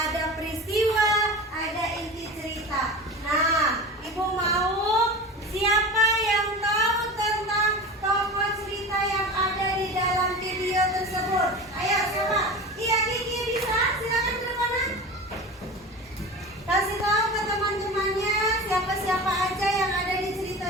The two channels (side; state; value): both; normal; correlation 0.31